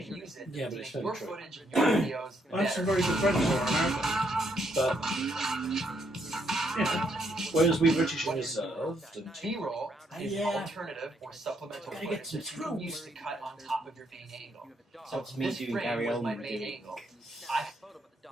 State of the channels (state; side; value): normal; both; correlation 0.74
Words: use it Yeah, to but it's make your very true. footage, your videos, I have some better. very good friends who are American. But, yeah. Whereas we British are reserved and... B-roll is Yeah. alternative or supplemental Gotta footage get some that you can use to screws. cut on top of your main angle. So it's me this doing frame Gary was my Oldman main doing angle. I